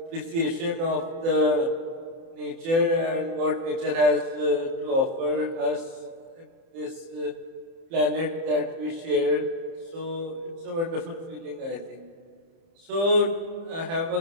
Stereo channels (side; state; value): left; late; 30 ms